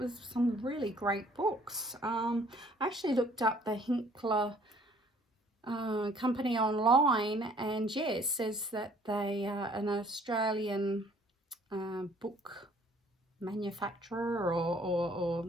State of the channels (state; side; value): normal; both; correlation 0.58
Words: some really great books. I actually looked up the Hinkler company online, and yeah, it says that they are an Australian book manufacturer, or